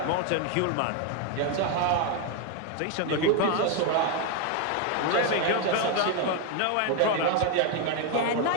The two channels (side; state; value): both; different; correlation 0.01